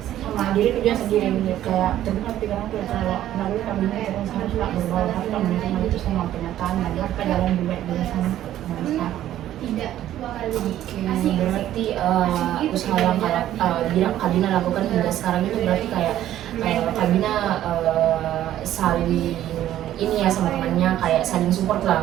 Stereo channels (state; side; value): quieter; left; 12.5 dB